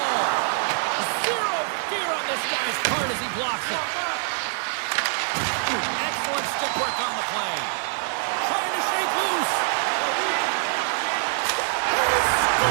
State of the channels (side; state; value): left; silent; digital silence